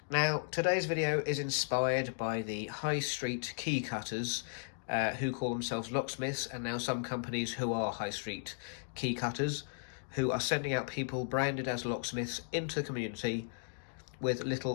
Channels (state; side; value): silent; right; digital silence